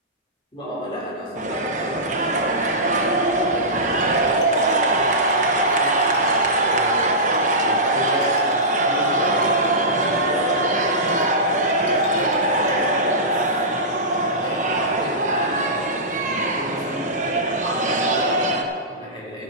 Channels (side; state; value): both; normal; correlation -0.18